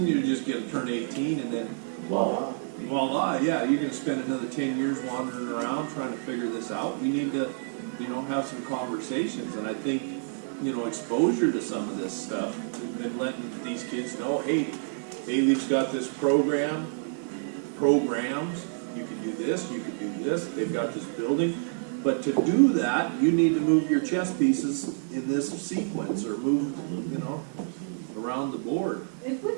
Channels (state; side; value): silent; left; digital silence